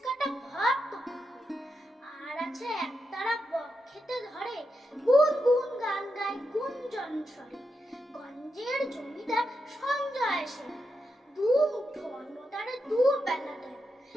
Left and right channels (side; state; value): both; normal; correlation 0.86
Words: কাটা ভক্ত কুকুর। আর আছে একতারা বক খেতে ধরে, গুন গুন গান গায় গুঞ্জন স্বরে। গঞ্জের জমিদার সঞ্জয় সেন, দু মুঠো অন্ন তারে দু বেলা দেয়।